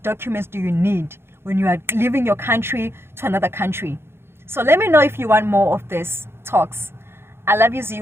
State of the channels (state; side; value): late; left; 0.12 ms